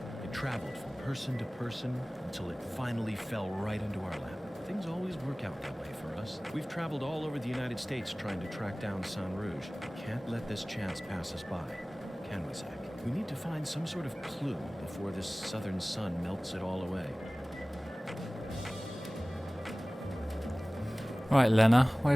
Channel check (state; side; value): normal; both; correlation 0.98